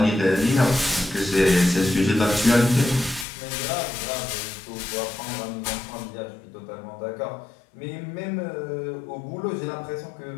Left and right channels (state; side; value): drops out; right; at 3.2 s